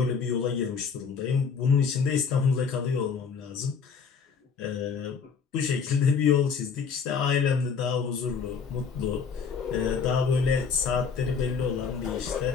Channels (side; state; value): right; quieter; 5.9 dB